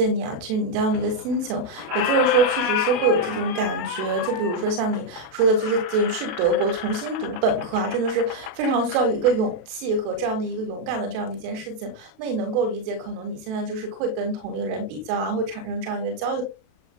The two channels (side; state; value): left; late; 32 ms